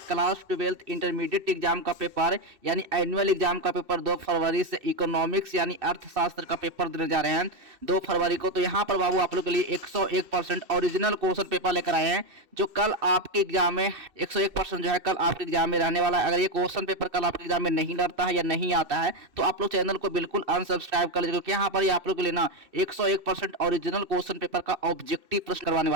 क्लास 12th इंटरमीडिएट एग्जाम का पेपर यानी एनुअल एग्जाम का पेपर 2 फरवरी से इकोनॉमिक्स यानी अर्थशास्त्र का पेपर देने जा रहे हैं 2 फरवरी को। तो यहाँ पर बाबू आप लोग के लिए 101% ओरिजिनल क्वेश्चन पेपर लेकर आए हैं जो कल आपके एग्जाम में 101% जो है कल आपके एग्जाम में रहने वाला है। अगर ये क्वेश्चन पेपर कल आपके एग्जाम में नहीं डरता है या नहीं आता है तो आप लोग चैनल को बिल्कुल अनसब्सक्राइब कर लीजिए, क्योंकि यहाँ पर आप लोग के लिए ना 101% ओरिजिनल क्वेश्चन पेपर का ऑब्जेक्टिव प्रश्न करवाने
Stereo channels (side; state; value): left; late; 2.6 ms